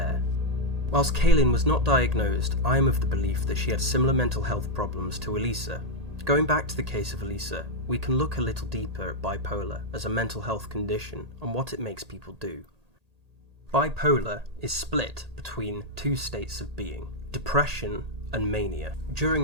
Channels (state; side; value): late; left; 1.8 ms